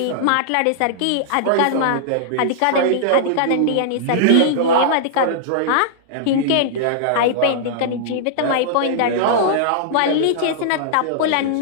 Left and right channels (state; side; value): different; both; correlation -0.01